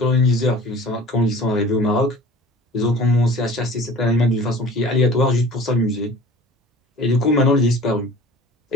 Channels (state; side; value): normal; both; correlation 0.43